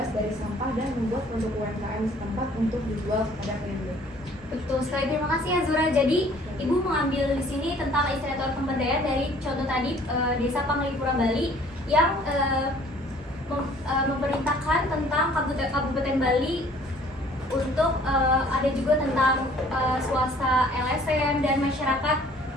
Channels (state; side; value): normal; both; correlation 0.55